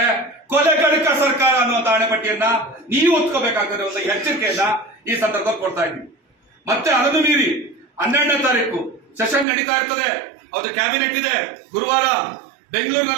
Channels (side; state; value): left; drops out; at 9.5 s